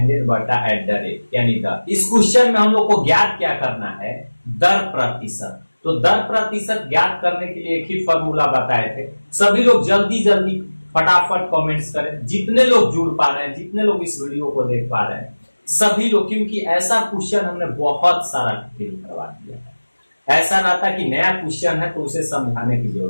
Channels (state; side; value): inverted; both; correlation -1.00